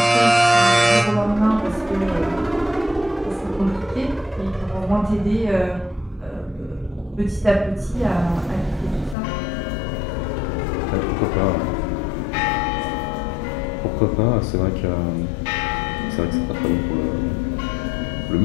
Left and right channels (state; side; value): drops out; right; at 9.2 s